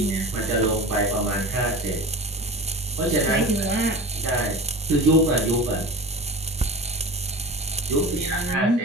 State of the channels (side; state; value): both; normal; correlation 0.32